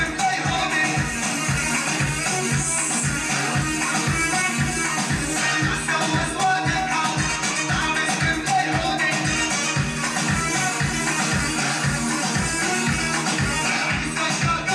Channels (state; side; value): identical; both; correlation 1.00